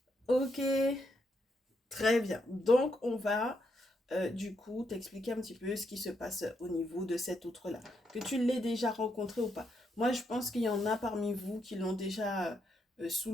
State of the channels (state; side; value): normal; both; correlation 0.79